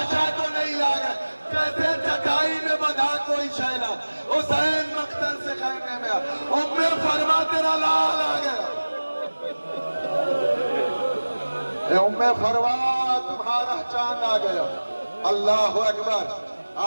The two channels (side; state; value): both; inverted; correlation -1.00